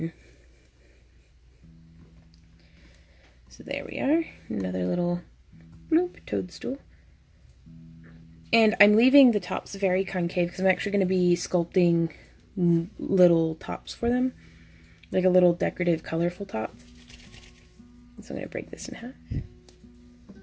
So there we are, another little bloop toadstool. And I'm leaving the tops very concave because I'm actually going to be sculpting little tops for them, like a little decorative, colorful top. So I'm going to break this in half.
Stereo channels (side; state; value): both; identical; correlation 1.00